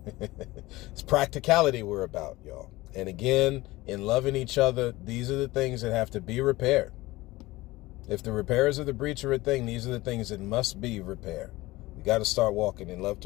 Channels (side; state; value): right; quieter; 19.4 dB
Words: practicality we're about, y'all. And again, in loving each other, these are the things that have to be repaired. If the repairs of the breach are a thing, these are the things that must be repaired. We got to start walking in love